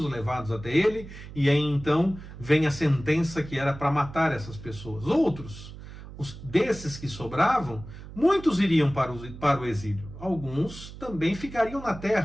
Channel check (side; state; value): right; noise; hum, 14 dB below the sound